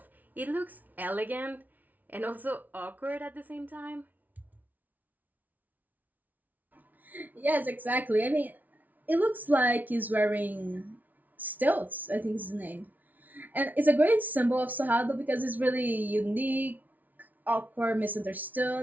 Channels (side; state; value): left; late; 0.078 ms